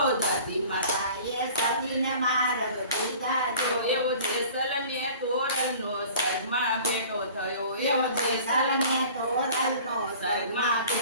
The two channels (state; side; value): inverted; both; correlation -0.45